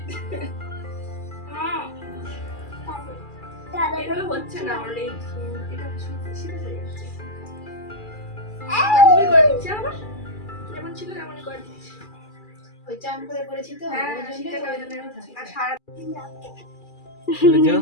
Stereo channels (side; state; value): right; late; 2.4 ms